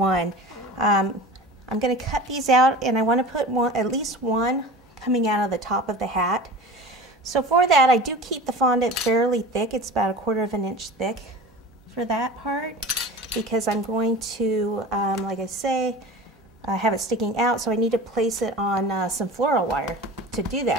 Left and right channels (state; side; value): normal; both; correlation 0.35